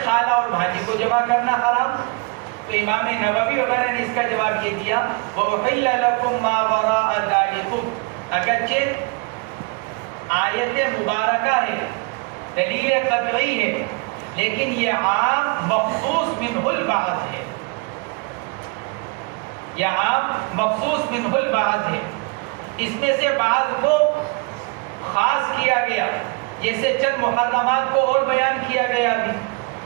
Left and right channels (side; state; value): left; quieter; 29.6 dB